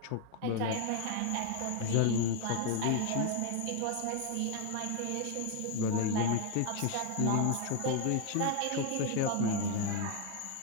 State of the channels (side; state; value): both; different; correlation 0.01